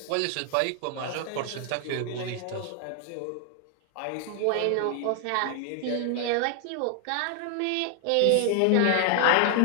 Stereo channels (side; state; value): both; different; correlation 0.00